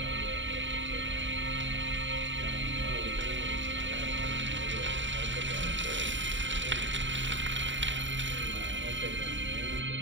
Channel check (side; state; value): left; late; 0.54 ms